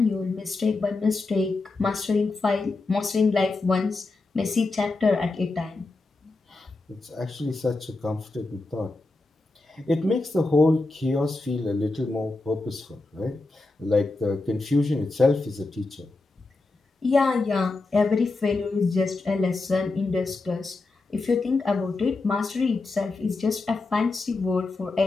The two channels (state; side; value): quieter; right; 3.4 dB